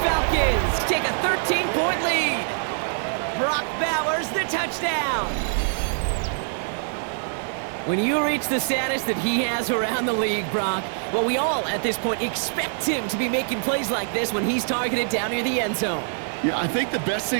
Falcons take a 13-point lead. Brock Bowers, the touchdown. When you reach the status that he has around the league, Brock, well, we all at this point expect him to be making plays like this when he's targeted down near the end zone. Yeah, I think the best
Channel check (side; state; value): left; silent; digital silence